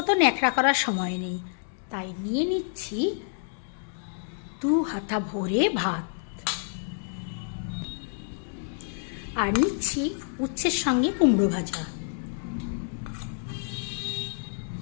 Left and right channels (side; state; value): right; silent; digital silence